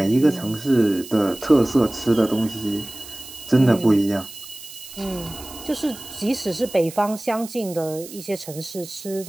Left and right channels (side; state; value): right; noise; hiss, 15 dB below the sound